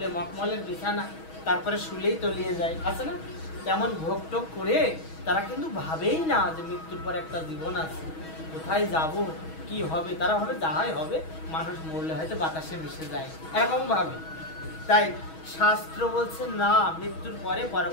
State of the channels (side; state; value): right; late; 6.3 ms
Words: মখমলের বিছানা, তারপরে শুলেই তলিয়ে যায়, আছে না? তেমন ভোগ টোগ করে তারা কিন্তু ভাবেই না যে মৃত্যুর পর একটা জীবন আছে, কোথায় যাব, কি হবে। তারা ভাবে যাহাই হবে, মানুষ মরলে হয়তো বাতাসে মিশে যায়, এরকম ভাবে। তাই শাস্ত্র বলছে না, মৃত্যুর পরে